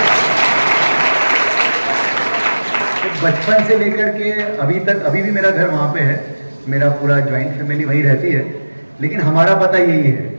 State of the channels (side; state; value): both; inverted; correlation -1.00